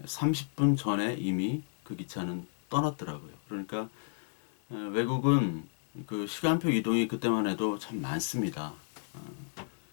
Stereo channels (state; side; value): silent; right; digital silence